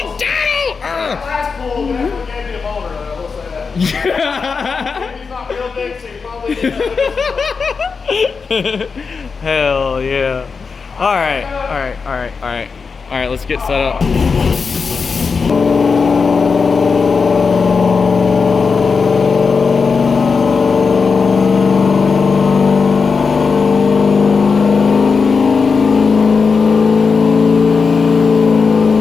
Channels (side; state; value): right; quieter; 5.1 dB